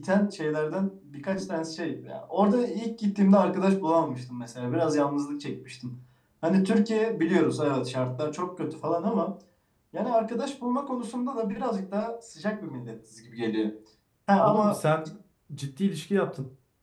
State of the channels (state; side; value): identical; both; correlation 1.00